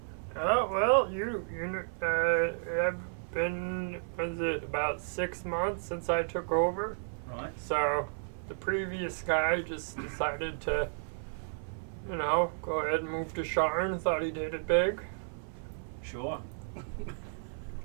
Well, you have been, was it about 6 months since I took over? Right. So the previous guy just decided to, go ahead and move to Sharn. Thought he did it big. Sure.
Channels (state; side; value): silent; left; 56 dB below the other